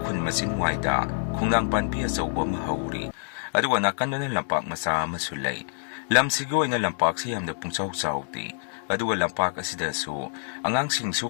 ꯃꯆꯤꯟꯋꯥꯏꯗ ꯈꯣꯡꯅꯥꯡ ꯄꯥꯟꯕꯤ ꯑꯆꯧꯕ ꯑꯃ ꯍꯧꯔꯤ, ꯑꯗꯨꯒ ꯅꯥꯀꯟꯗꯅ ꯂꯝꯄꯥꯛ ꯃꯆꯥ ꯑꯃꯁꯨ ꯂꯩ꯫ ꯂꯝꯁꯤꯒꯤ ꯑꯣꯏꯅ ꯂꯝꯄꯥꯛꯁꯤ ꯌꯥꯝꯅ ꯄꯨꯡꯆꯥꯎ ꯆꯥꯎꯗꯦ, ꯑꯗꯨꯒ ꯂꯝꯄꯥꯛ ꯑꯁꯤꯗꯁꯨ ꯑꯉꯥꯡꯁꯤꯡꯁꯨ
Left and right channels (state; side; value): silent; right; 61 dB below the other